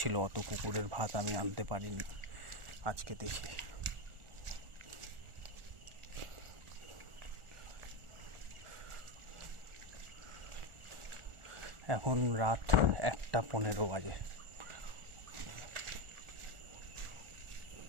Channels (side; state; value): left; late; 1.4 ms